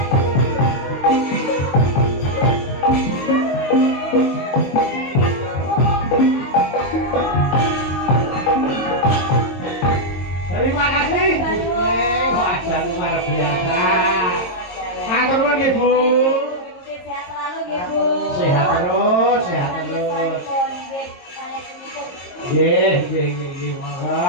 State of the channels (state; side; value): late; right; 22 ms